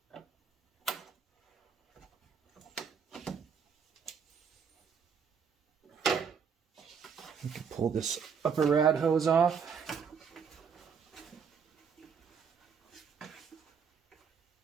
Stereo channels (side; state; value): left; quieter; 6.4 dB